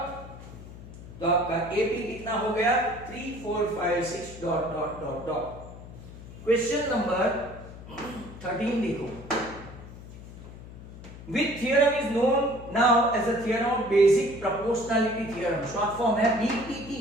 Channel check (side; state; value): left; noise; hum, 15 dB below the sound